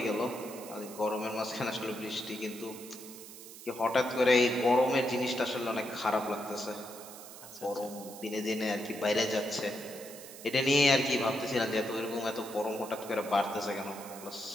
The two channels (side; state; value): right; noise; hiss, 15 dB below the sound